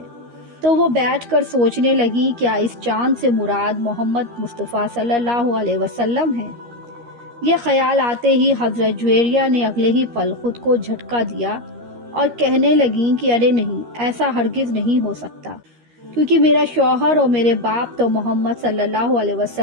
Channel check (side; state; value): left; late; 13 ms